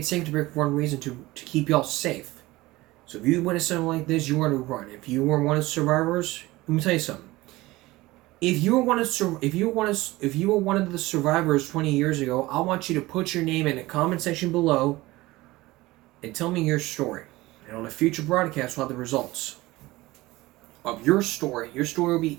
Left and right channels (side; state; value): left; quieter; 19.4 dB